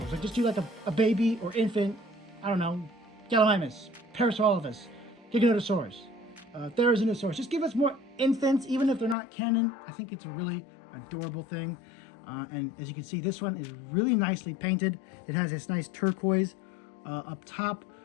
Like just do like a baby or infant, I don't know, Gallimimus, Parasaurolophus, Giganotosaurus, Therizinosaurus. Just give us more infants, even if they're not canon. I think it's a really adorable thing. And as you can see, this one is really nicely painted. It has this nice turquoise up top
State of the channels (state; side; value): drops out; right; at 9.2 s